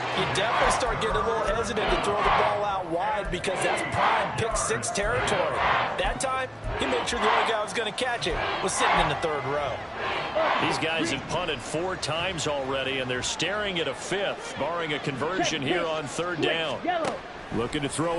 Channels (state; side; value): identical; both; correlation 1.00